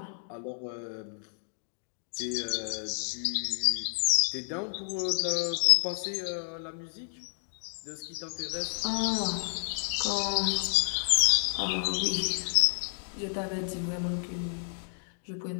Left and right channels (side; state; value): right; silent; digital silence